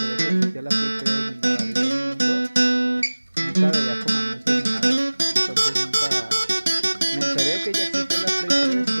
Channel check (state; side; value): inverted; both; correlation -1.00